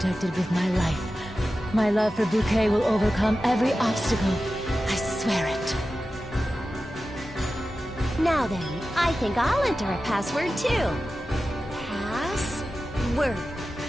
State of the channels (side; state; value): both; normal; correlation 0.93